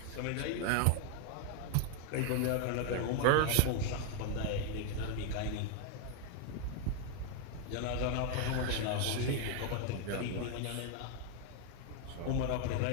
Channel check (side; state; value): both; different; correlation 0.01